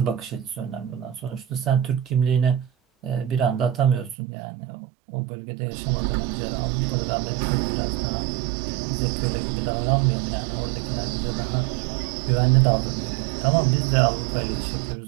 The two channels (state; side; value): drops out; left; at 4.2 s